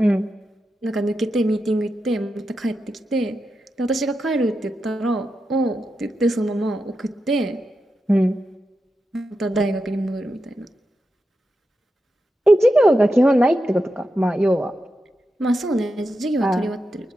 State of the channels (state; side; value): normal; both; correlation 0.88